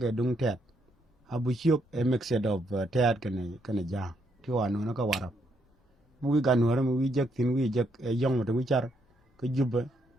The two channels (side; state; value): both; normal; correlation 0.75